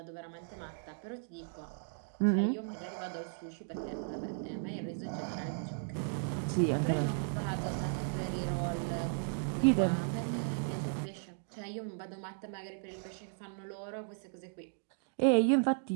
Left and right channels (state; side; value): silent; left; digital silence